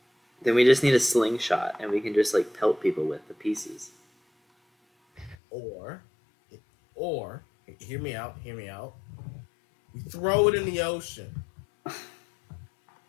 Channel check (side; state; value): right; drops out; at 5.4 s